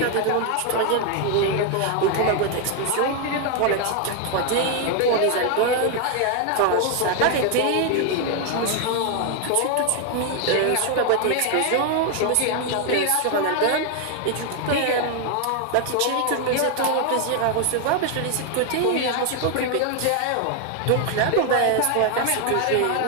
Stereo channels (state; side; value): different; both; correlation 0.01